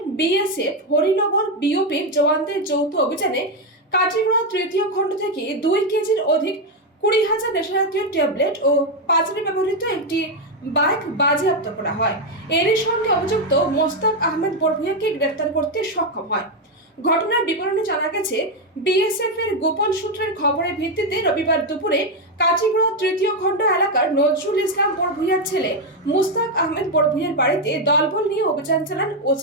বিএসএফ হরিনগর বিওপির জওয়ানদের যৌথ অভিযানে কাটিগড়া তৃতীয় খণ্ড থেকে 2 কেজির অধিক 20,000 নেশাজাতীয় ট্যাবলেট ও পাচারে ব্যবহৃত একটি বাইক বাজেয়াপ্ত করা হয়। এরই সঙ্গে অভিযুক্ত মোস্তাক আহমেদ বরভুইয়াকে গ্রেফতার করতে সক্ষম হয়। ঘটনার বিবরণে জানা গেছে, বিএসএফ এর গোপন সূত্রের খবরের ভিত্তিতে রবিবার দুপুরে কাটিগড়া তৃতীয় খণ্ড এলাকার নজরুল ইসলাম বরভুইয়ার ছেলে মুস্তাক আহমেদ বরভুইয়ার বাড়িতে দলবল নিয়ে অভিযান চালান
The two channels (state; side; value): normal; both; correlation 0.05